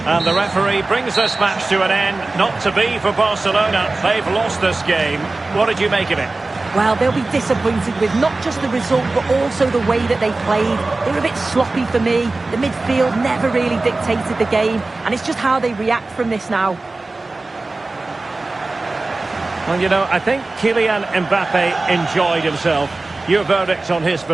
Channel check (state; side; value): quieter; left; 3.3 dB